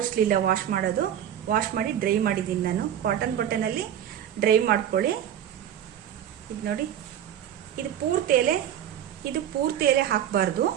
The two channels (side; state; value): left; quieter; 10.3 dB